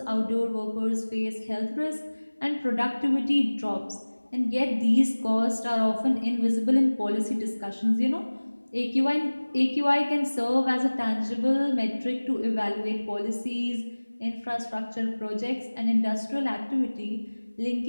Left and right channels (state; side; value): inverted; both; correlation -1.00